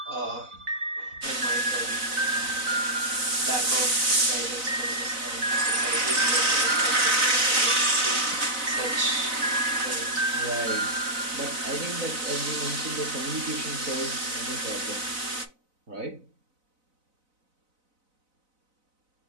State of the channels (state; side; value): late; left; 4.0 ms